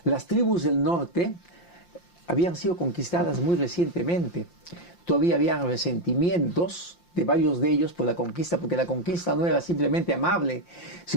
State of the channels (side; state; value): right; late; 5.7 ms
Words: las tribus del norte habían sido conquistadas muy recientemente. Todavía habían resentimientos, de varios de ellos por la conquista, porque la conquista no era simplemente amable,